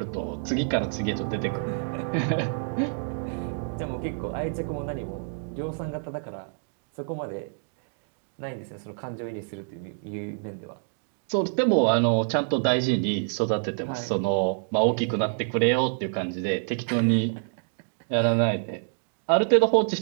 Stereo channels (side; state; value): left; silent; digital silence